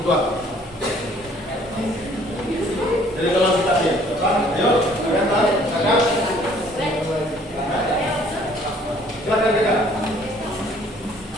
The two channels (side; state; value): both; normal; correlation 0.58